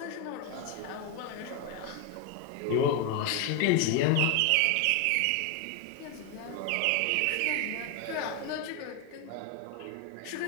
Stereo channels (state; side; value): different; both; correlation 0.02